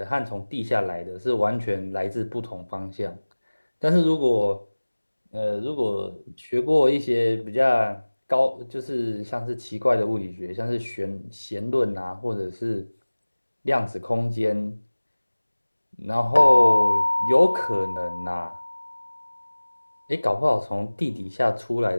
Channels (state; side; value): inverted; both; correlation -1.00